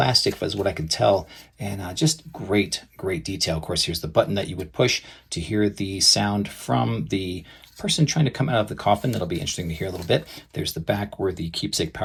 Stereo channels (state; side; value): identical; both; correlation 1.00